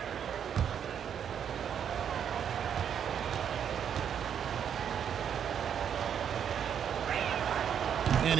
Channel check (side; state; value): left; quieter; 8.4 dB